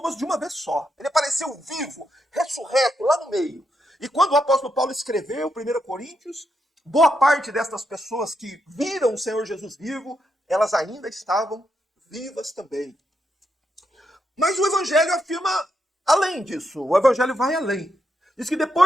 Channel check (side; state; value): both; normal; correlation 0.82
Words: de uma vez só. Ele apareceu vivo, ressurreto, lá no meio. E quando o apóstolo Paulo escreveu 1 Coríntios, boa parte destas pessoas que viram o Senhor Jesus vivo, elas ainda estavam vivas também. Mas o Evangelho afirma além disso. O Evangelho vai além. Diz que